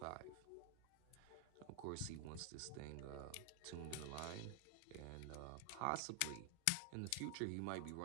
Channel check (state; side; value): different; both; correlation 0.00